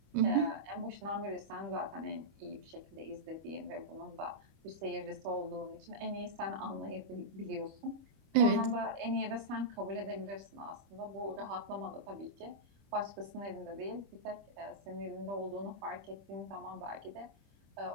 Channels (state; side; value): late; left; 25 ms